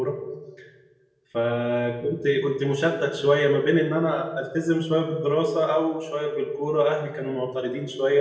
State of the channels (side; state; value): both; identical; correlation 1.00